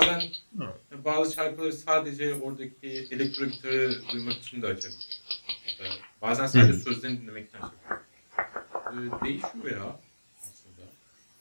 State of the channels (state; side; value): inverted; both; correlation -1.00